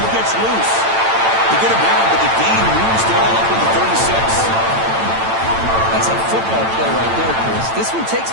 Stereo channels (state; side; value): late; left; 8.9 ms